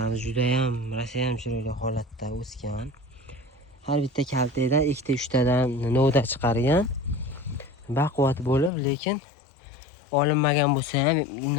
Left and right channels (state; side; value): drops out; right; at 8.7 s